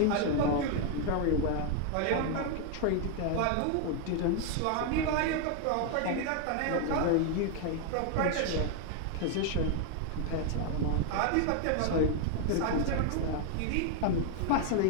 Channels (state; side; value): different; both; correlation 0.01